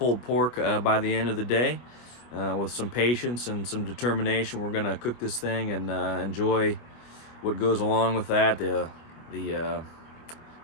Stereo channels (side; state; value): right; late; 25 ms